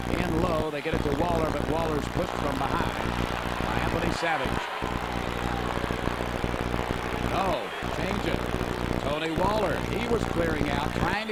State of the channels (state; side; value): identical; both; correlation 1.00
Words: in low. They get it to Waller, but Waller's pushed from behind by Anthony Savage. No, change it. Tony Waller, he was clearing out, trying